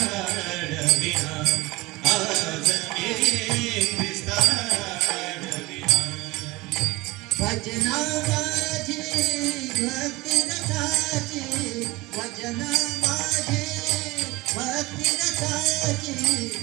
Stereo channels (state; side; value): quieter; left; 21.3 dB